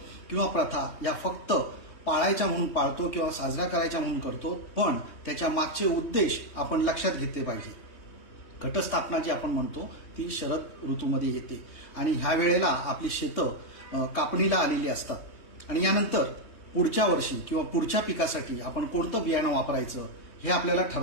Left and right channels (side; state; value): right; late; 3.2 ms